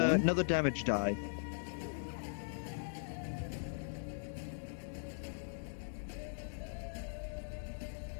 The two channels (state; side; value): silent; right; digital silence